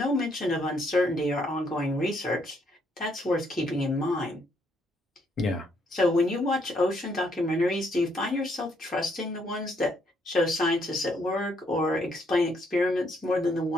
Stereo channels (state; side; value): normal; both; correlation 0.72